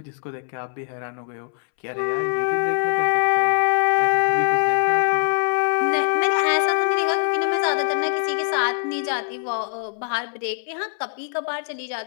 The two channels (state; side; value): silent; right; 64 dB below the other